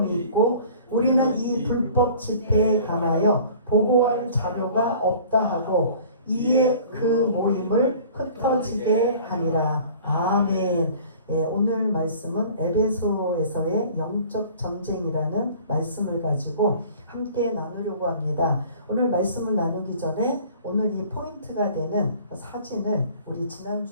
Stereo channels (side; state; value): both; inverted; correlation -0.48